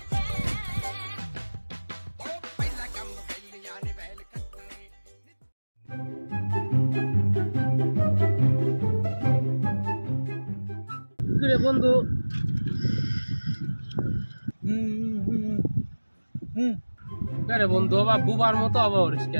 কিরে বন্ধু, আরে বন্ধু বাবা বুবার মতো অবাবরিস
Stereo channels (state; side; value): inverted; both; correlation -1.00